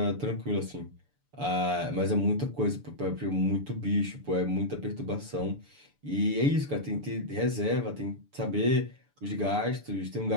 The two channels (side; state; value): left; late; 6.9 ms